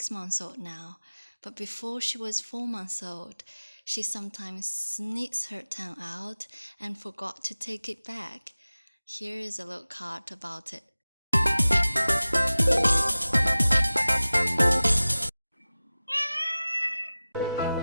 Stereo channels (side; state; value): both; inverted; correlation -0.97